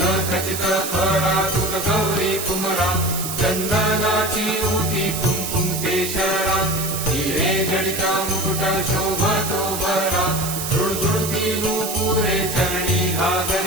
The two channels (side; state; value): right; noise; hiss, 5 dB below the sound